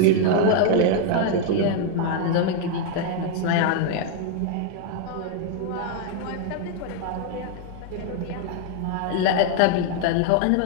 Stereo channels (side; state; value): both; different; correlation 0.00